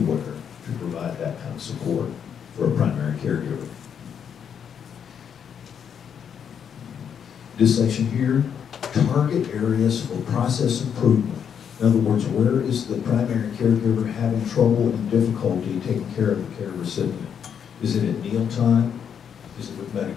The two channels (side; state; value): right; quieter; 7.9 dB